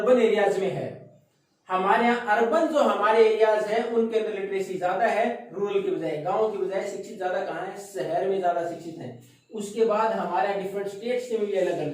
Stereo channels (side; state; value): both; identical; correlation 1.00